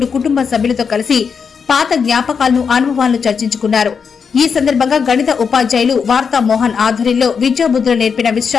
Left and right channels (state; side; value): quieter; right; 6.1 dB